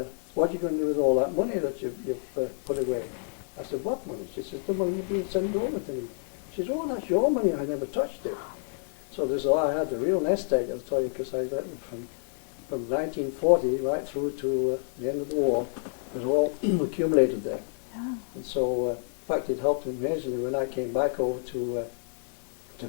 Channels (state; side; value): silent; right; digital silence